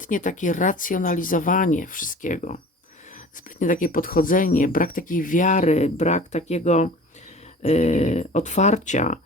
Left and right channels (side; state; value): both; normal; correlation 0.41